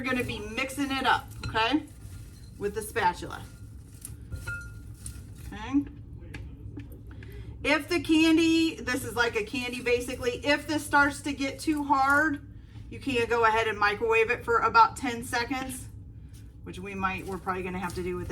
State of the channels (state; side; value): identical; both; correlation 1.00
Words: be mixing it up, okay? With the spatula. Okay. If the candy, this is like a candy basically, if this starts to get too hard, you can go ahead and microwave it for about 10 seconds, which we're probably gonna have to do with